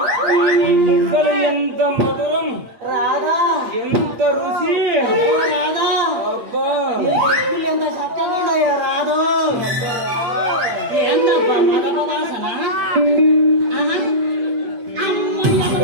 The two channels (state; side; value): late; left; 8.6 ms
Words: అసలు ఎంత మధురం, రాధా ఎంత రుచి. రాధా అబ్బా, ఎంత చక్కగా ఉన్నాయో రాదు. ఏందబ్బా మగపదాసన? ఆహా. అమ్మ